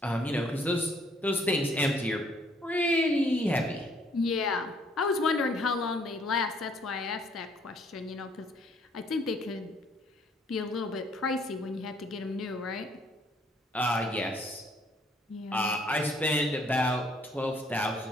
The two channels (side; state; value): both; normal; correlation 0.64